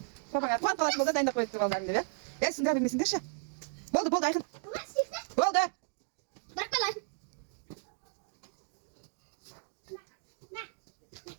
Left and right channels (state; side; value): silent; left; digital silence